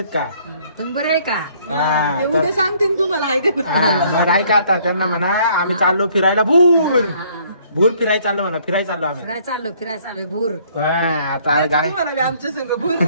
का? तुम्ही बरं आहे का? ते उद्या सांगते तुम्हाला आहे का ऐका आता त्यांना म्हणा आम्ही चाललो फिरायला भूर भूर फिरायला चाललो म्हणा. फिरायला चाललो आम्ही. फिरायला चाललो भूर. आता गाय आमच्या संग भूर.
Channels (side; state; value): both; inverted; correlation -0.62